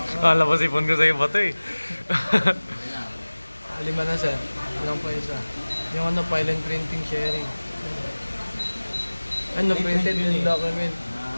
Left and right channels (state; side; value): inverted; both; correlation -1.00